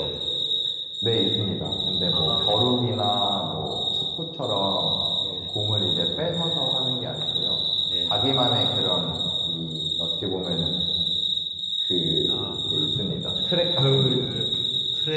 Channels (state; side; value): identical; both; correlation 1.00